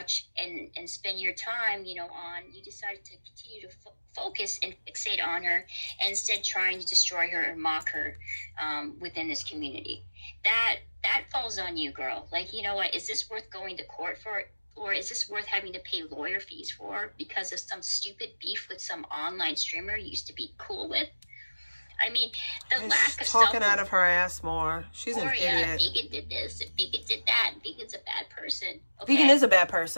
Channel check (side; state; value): both; inverted; correlation -1.00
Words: and spend your time, you know, on, you decided to continue to focus and fixate on her and instead trying to destroy her and mock her within this community. That falls on you, girl. Like, you know what, is this worth going to court for? Or is this worth having to pay lawyer fees for because of some stupid beef with some online streamer you used to be cool with? I mean, the lack of talking out of her ass more. She's an idiot. Vegan did this, and Vegan did that, and Vegan's a bad person. Okay? Vegan is a bad